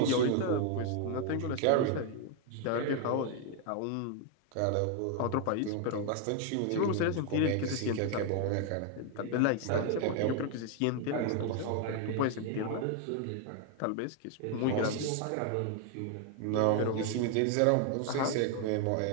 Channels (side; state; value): both; different; correlation 0.01